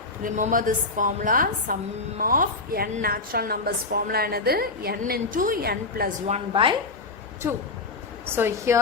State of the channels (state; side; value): quieter; right; 3.5 dB